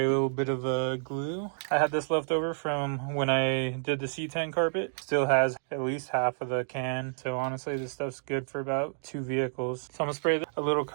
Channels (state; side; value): silent; left; digital silence